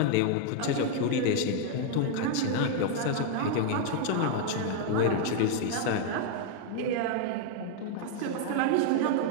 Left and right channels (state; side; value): different; both; correlation 0.00